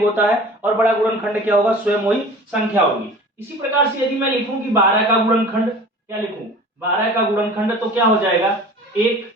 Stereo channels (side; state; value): both; normal; correlation 0.42